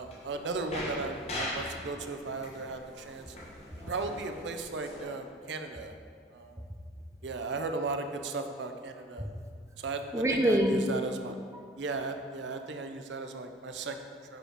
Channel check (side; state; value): both; normal; correlation 0.41